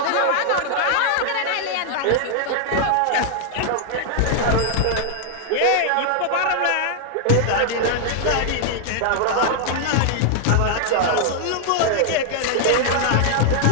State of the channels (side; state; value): both; different; correlation 0.00